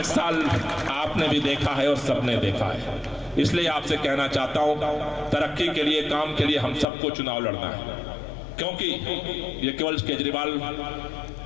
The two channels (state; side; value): drops out; right; at 6.9 s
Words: साल आपने भी देखा है और सबने देखा है। इसलिए आपसे कहना चाहता हूं, तरक्की के लिए, काम के लिए हम सबको चुनाव लड़ना है, क्योंकि ये केवल केजरीवाल